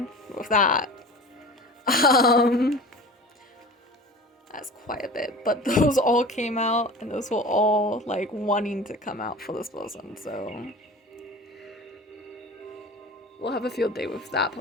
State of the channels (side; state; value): both; normal; correlation 0.37